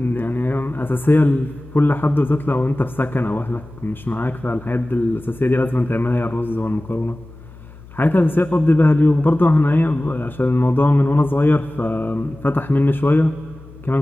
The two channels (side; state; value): left; noise; hum, 20 dB below the sound